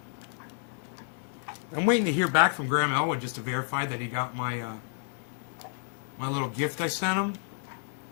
I'm waiting to hear back from Graham Elwood just to verify that he got my my little gift I sent him.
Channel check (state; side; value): silent; right; 58 dB below the other